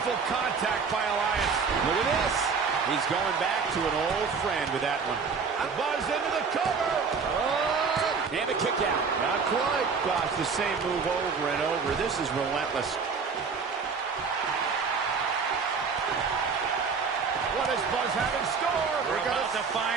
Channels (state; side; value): quieter; left; 5.4 dB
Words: contact by Elias. Look at this. He's going back to an old friend with that one. Buzz into the cover. Oh! And a kick out. Not quite. Gosh, the same move over and over. This is relentless. What does Buzz have in store? We're about to